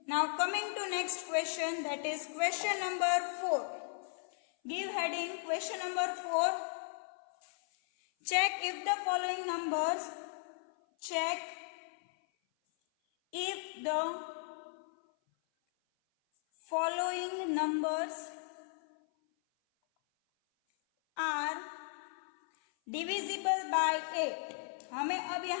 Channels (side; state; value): right; silent; 54 dB below the other